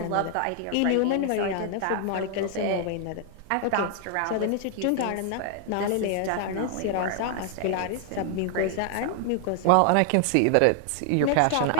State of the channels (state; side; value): different; both; correlation 0.00